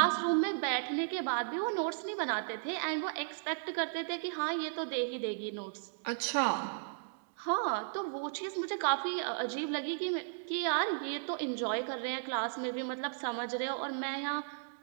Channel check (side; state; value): left; silent; digital silence